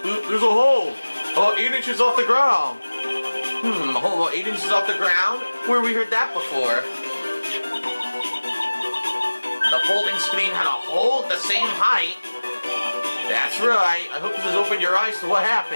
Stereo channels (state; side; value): inverted; both; correlation -1.00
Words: There's a hole. About 8 inches off the ground. A hole about 8 inches off the ground? Where we heard that before? The folding screen had a hole the same height. That's right. I hope this has opened your eyes to what